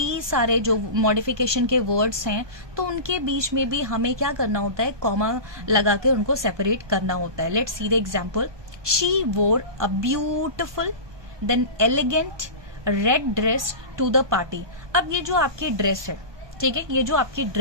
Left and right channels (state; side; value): late; left; 1.2 ms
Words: सारे जो मॉडिफिकेशन के वर्ड्स हैं, तो उनके बीच में भी हमें क्या करना होता है, कॉमा लगा के उनको सेपरेट करना होता है। Let's see the example, she wore a beautiful then elegant red dress to the party. अब ये जो आपकी ड्रेस है, ठीक है, ये जो आपकी